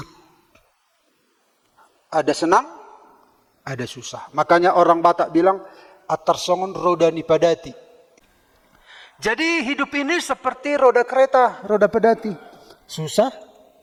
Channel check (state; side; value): identical; both; correlation 1.00